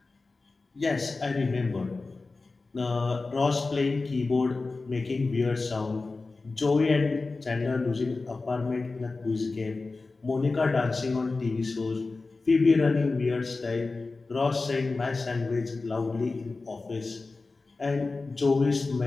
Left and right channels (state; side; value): quieter; right; 3.7 dB